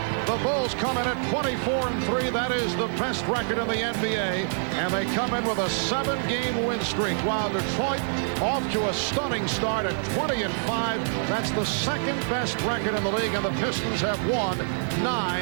The Bulls come in at 24-3. That is the best record in the NBA. And they come in with a 7-game win streak, while Detroit off to a stunning start at 20-5. That's the second best record in the league, and the Pistons have won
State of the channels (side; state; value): left; silent; digital silence